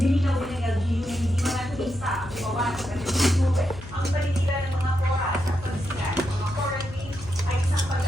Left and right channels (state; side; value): noise; left; hum, 15 dB below the sound